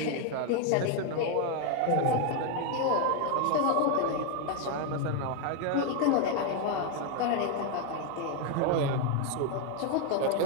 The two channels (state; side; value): different; both; correlation 0.01